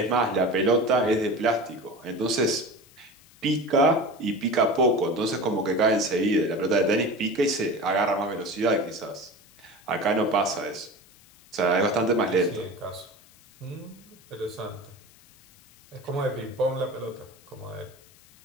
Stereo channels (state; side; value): noise; left; hiss, 26 dB below the sound